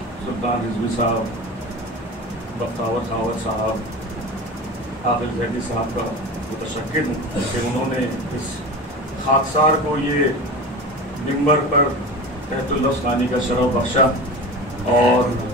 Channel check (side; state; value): both; normal; correlation 0.31